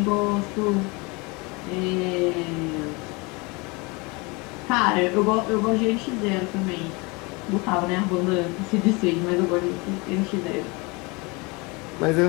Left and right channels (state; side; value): quieter; right; 27.2 dB